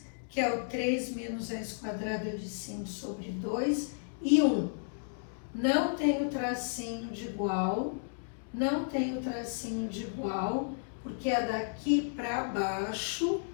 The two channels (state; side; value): silent; right; digital silence